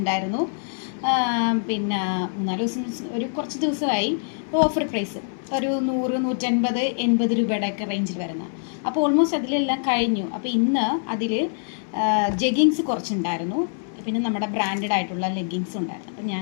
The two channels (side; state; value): right; silent; 62 dB below the other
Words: പിന്നെ 3-4 ദിവസം കുറച്ച് ദിവസമായി ഓഫർ പ്രൈസ് ഒരു 100-150-80 രൂപയുടെയൊക്കെ റേഞ്ചിൽ വരുന്ന. അപ്പോൾ ഓൾമോസ്റ്റ് അതിലെല്ലാം കഴിഞ്ഞു. അപ്പോൾ ഇന്ന് അതിൽ ജെഗിങ്സ് കുറച്ചുണ്ടായിരുന്നു, പിന്നെ നമ്മുടെ ബ്രാൻഡഡ് ആയിട്ടുള്ള ലെഗിങ്സും ഉണ്ടായിരുന്നു. അപ്പം